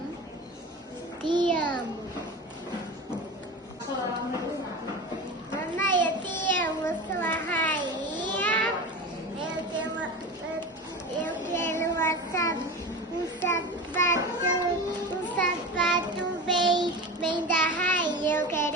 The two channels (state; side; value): normal; both; correlation 0.29